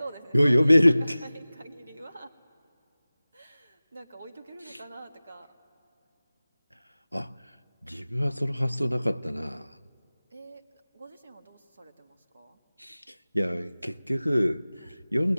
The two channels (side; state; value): both; inverted; correlation -0.98